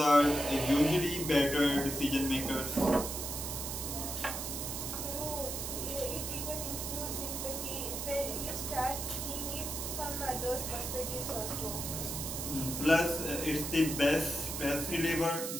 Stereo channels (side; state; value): right; noise; hiss, 4 dB below the sound